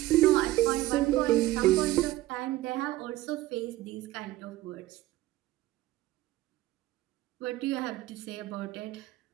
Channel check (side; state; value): left; quieter; 16.4 dB